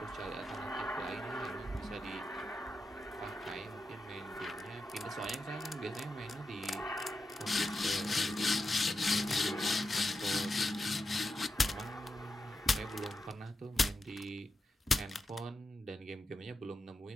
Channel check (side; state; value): both; normal; correlation 0.88